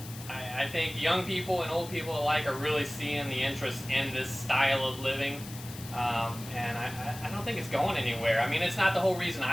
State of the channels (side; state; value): left; noise; hiss, 14 dB below the sound